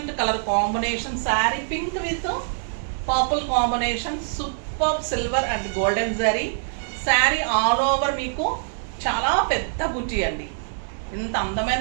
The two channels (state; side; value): silent; left; digital silence